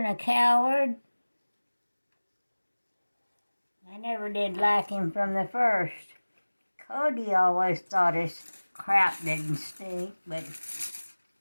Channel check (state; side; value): inverted; both; correlation -1.00